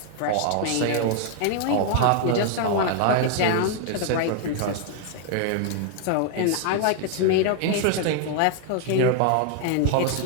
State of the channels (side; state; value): both; different; correlation 0.00